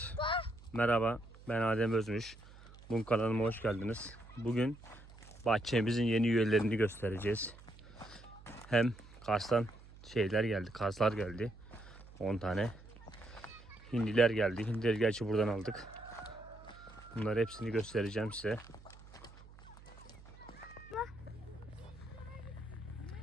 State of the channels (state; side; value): noise; right; hum, 19 dB below the sound